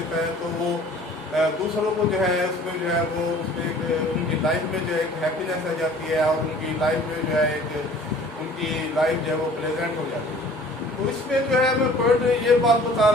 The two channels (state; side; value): normal; both; correlation 0.50